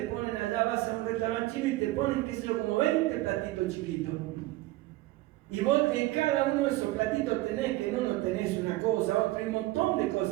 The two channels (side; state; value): left; quieter; 18.2 dB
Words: ponen allá, vas a un restaurante chino y te ponen, qué sé yo, como 20 platitos chiquitos. Y vos en cada uno de esos platitos tenés, que en uno tenés una cosa, otro, y un montón de